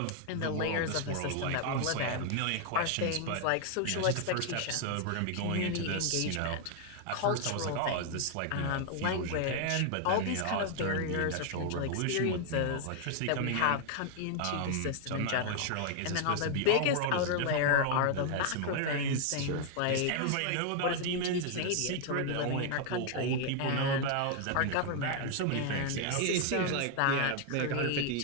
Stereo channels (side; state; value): both; different; correlation 0.00